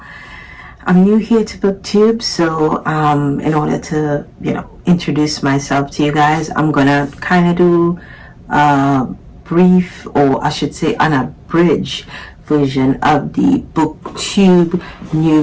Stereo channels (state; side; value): identical; both; correlation 1.00